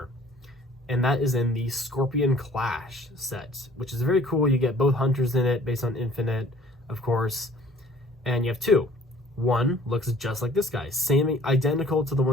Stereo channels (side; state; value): both; normal; correlation 0.53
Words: And that is in the Scorpion Clash set, which is very cool. You get both hunters in it based on Infinite, of course. And you have two. One looks just like this guy, same, identical to the